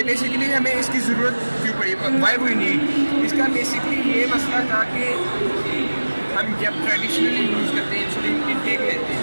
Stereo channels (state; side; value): inverted; both; correlation -1.00